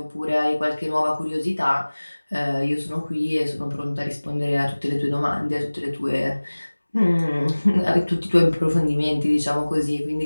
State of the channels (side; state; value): both; inverted; correlation -1.00